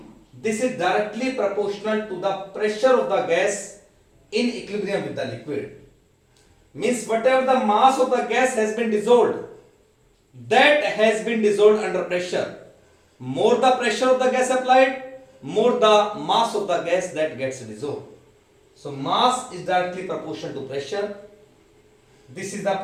This is directly proportional to the pressure of the gas in equilibrium with the liquid. Means whatever the mass of the gas has been dissolved, that has been dissolved under pressure. More the pressure of the gas applied, more the mass of the gas that gets dissolved. So mass is directly proportional to pressure. This is the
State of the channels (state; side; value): identical; both; correlation 1.00